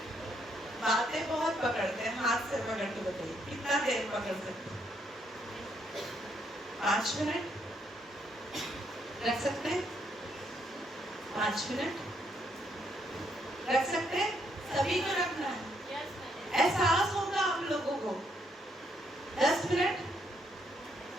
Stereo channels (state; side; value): normal; both; correlation 0.73